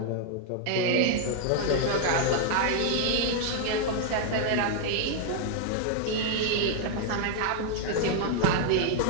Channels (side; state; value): both; different; correlation 0.00